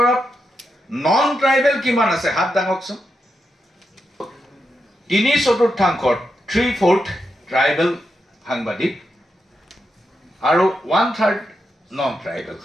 নন ট্ৰাইবেল কিমান আছে? হাত দাঙকচোন। 3/4 3/4 ট্ৰাইবেল সাংবাদিক আৰু 1/3 নন ট্ৰাইবেল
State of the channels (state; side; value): normal; both; correlation 0.85